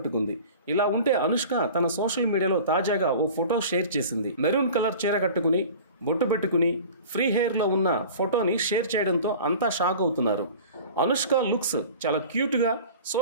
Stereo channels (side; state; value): both; inverted; correlation -0.40